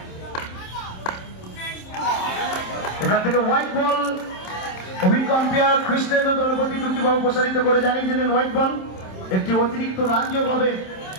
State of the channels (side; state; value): right; late; 27 ms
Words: এখান থেকে হোয়াইট বল। অভিজ্ঞ আম্পায়ার কৃষ্ণেন্দ্র দলপতি দুটি বল প্রসারিত করে জানিয়ে দিলেন হোয়াইট বল, একটি অতিরিক্ত রান যোগ হবে